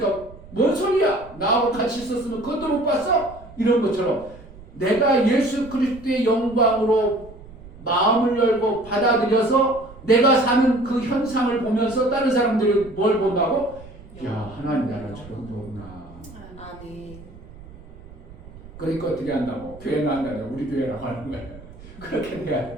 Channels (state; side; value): noise; right; rumble, 19 dB below the sound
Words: 뭔 소리야? 나하고 같이 있었으면 그것도 못 봤어? 이런 것처럼 내가 예수 그리스도의 영광으로 마음을 열고 받아들여서 내가 사는 그 현상을 보면서 다른 사람들이 뭘 본다고? 야 하나님 나라 저런 거구나. 아멘. 그러니까 어떻게 한다고? 교회는 한다고 우리 교회라고 하는 거예요. 그렇게 돼야